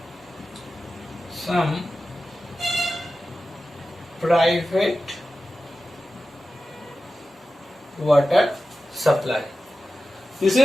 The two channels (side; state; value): both; normal; correlation 0.93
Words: some private water supply. This